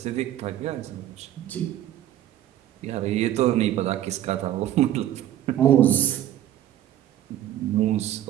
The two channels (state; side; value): quieter; left; 12.2 dB